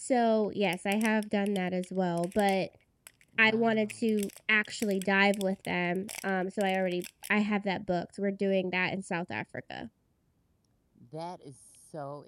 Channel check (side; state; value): both; identical; correlation 1.00